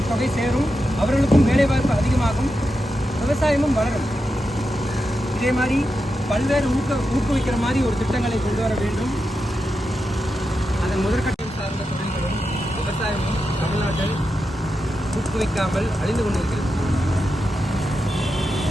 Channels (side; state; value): both; normal; correlation 0.88